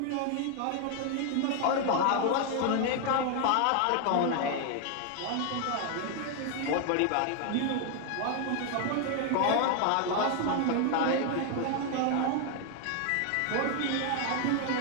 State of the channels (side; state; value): both; different; correlation 0.01